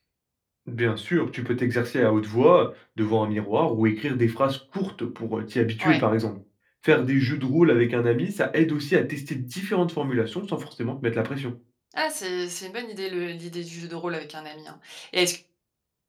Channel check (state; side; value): identical; both; correlation 1.00